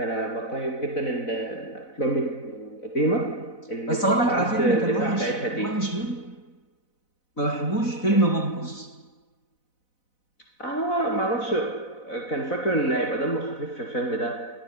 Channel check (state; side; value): late; right; 4.0 ms